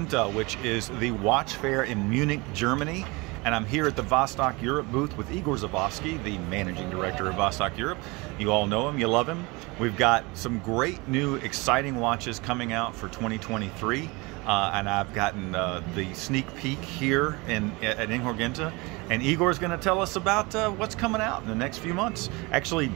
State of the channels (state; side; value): quieter; left; 25.4 dB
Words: which is the watch fair in Munich, Germany. And I'm here at the Vostok-Europe booth with Igor Zavosky, the managing director of Vostok-Europe. You all know him, you love him. We've got some great new exciting watches coming out for 2023. And I've gotten the sneak peek here at Inhorgenta. And Igor's going to tell us about what's coming out in the next few months. Actually,